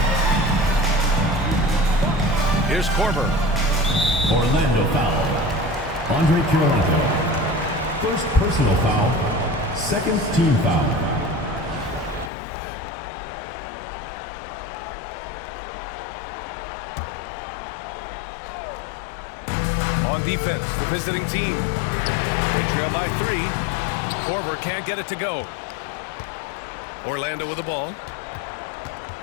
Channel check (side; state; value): right; drops out; at 12.3 s